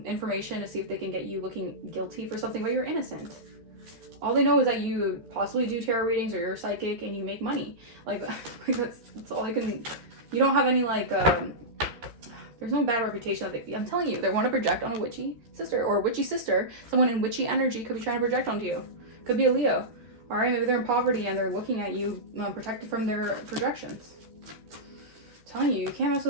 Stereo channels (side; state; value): left; late; 13 ms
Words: information to see if they can get you looking guilty for something, but you're innocent. All they know is that you possibly do tarot readings or you're psychic and you make money. Like that's all I can. You don't have any there's no bad reputation. I'm telling you, they want to project on a witchy sister or a witchy sister. Someone in witchy energy could be trying to project onto you. Could be a Leo. All right, maybe they're in poverty and they're looking at you, protected from their projections. I'm telling you, you can't mess